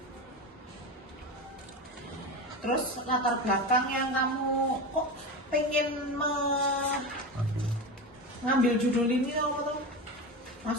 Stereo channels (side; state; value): both; normal; correlation 0.23